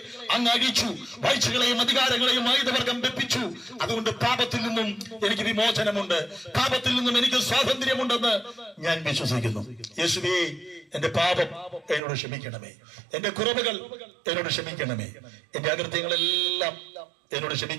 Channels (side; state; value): left; drops out; at 12.0 s